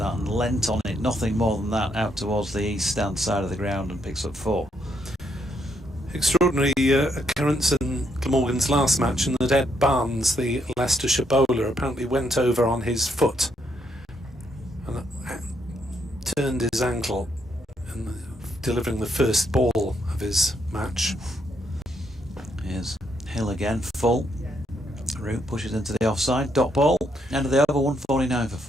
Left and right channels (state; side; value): normal; both; correlation 0.76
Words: and leant on it, nothing more than that, out towards the east stand side of the ground, and picks up 4. Extraordinary occurrence in Glamorgan's last match, in that Ed Barnes, the Leicestershire bowler, apparently went over on his foot and turned his ankle in delivering the first ball of his match. Here's Hill again, full. Root pushes into the offside, dot ball, end of the over, 149 for